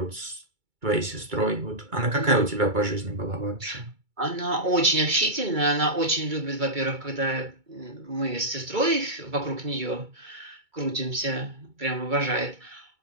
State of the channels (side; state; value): left; late; 2.3 ms